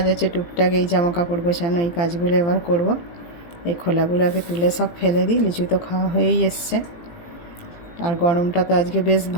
আছে টুকটাক, এই জামা কাপড় গোছানো, এই কাজগুলো এবার করব। এই খোলাগুলোকে তুলে সব ফেলে দিই। লিচু তো খাওয়া হয়েই এসছে। আর গরমটা তো আজকে বেশ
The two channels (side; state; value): right; late; 18 ms